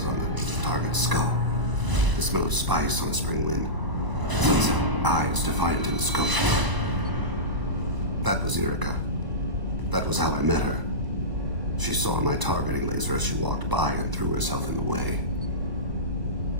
on the target's skull. The smell of spice on a spring wind. Sunset eyes defiant in the scope. That was Erica. That was how I met her. She saw my targeting laser as she walked by and threw herself in the way.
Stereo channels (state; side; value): late; left; 1.0 ms